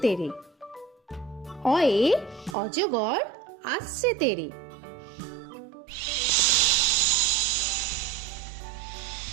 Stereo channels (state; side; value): drops out; left; at 2.6 s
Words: তেরে। অয়ে অজগর আসছে তেরে।